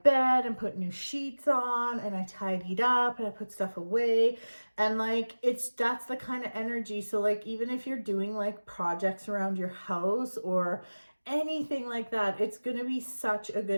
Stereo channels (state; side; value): inverted; both; correlation -1.00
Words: bed and put new sheets on, and I tidied up and I put stuff away. And, like, that's the kind of energy. So, like, even if you're doing, like, projects around your house or anything like that, it's gonna be such a